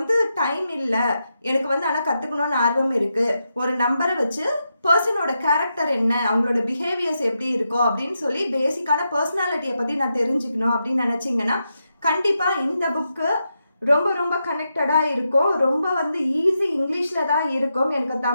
டைம் இல்லை, எனக்கு வந்து ஆனால் கற்றுக்கணுன்னு ஆர்வம் இருக்குது, ஒரு நம்பரை வச்சு பர்சனோட கேரக்டர் என்ன, அவங்களோட பிஹேவியர்ஸ் எப்படி இருக்கோ அப்படின்னு சொல்லி பேசிக்கான பர்சனாலிட்டியை பற்றி நான் தெரிஞ்சுக்கணும் அப்படின்னு நினச்சிங்கன்னா கண்டிப்பாக இந்த புக்கு ரொம்ப ரொம்ப கனெக்டடாக இருக்கும். ரொம்ப வந்து ஈஸி, இங்கிலீஷில் தான் இருக்கும். எனக்கு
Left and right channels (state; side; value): inverted; both; correlation -0.85